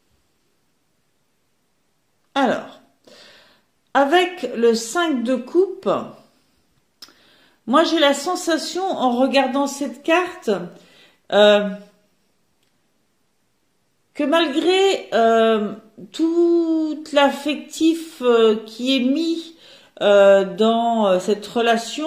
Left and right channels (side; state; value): both; identical; correlation 1.00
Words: Alors, avec le 5 de coupe, moi j'ai la sensation en regardant cette carte que malgré tout l'affectif qui est mis dans cette